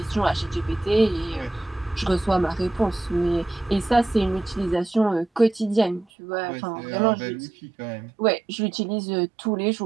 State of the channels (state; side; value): drops out; left; at 6.1 s